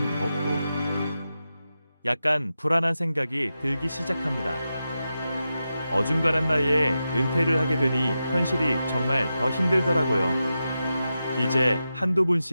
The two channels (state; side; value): inverted; both; correlation -0.90